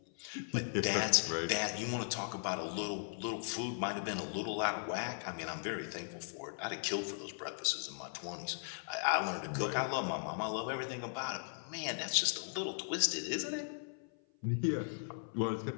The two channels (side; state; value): right; silent; 53 dB below the other